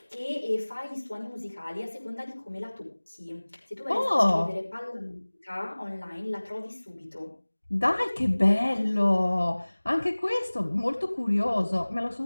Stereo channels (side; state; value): both; inverted; correlation -1.00